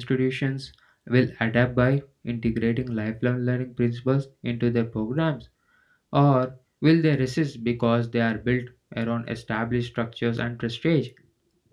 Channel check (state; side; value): identical; both; correlation 1.00